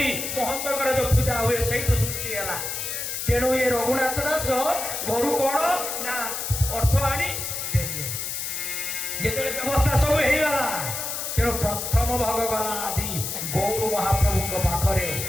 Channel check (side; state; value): left; noise; hiss, 4 dB below the sound